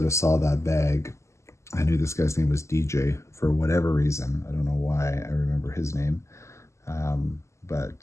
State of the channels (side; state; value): right; late; 0.14 ms